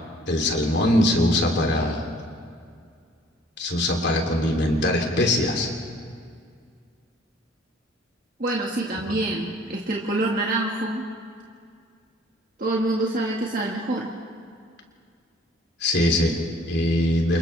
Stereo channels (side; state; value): both; normal; correlation 0.56